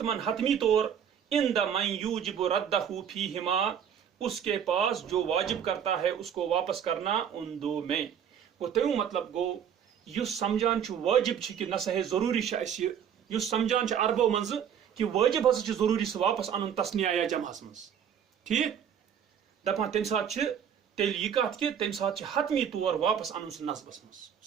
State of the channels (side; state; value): left; quieter; 8.4 dB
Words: حتمی طور ان دا من یوجب ردہ فیہما اس کے پاس جو واجب کرتا ہے اس کو واپس کرنا ان دو میں گو تمیُک مطلب گو یُس سمجھان چھُ واجب چھُ کہ نسا ہے ضروری چھُ اسہِ یُس سمجھان چھُ عربو منٛزٕ کہ واجب ہسا چھُ ضروری سُہ واپس انُن تسنیہ یا جمعس منٛز ٹھیک دپان تمہِ ساتہٕ چھِ تیٚلہِ یہِ کتھ کہ تمہِ ساتہٕ چھِ حتمی طور واپس انُن سُہ نصبس منٛز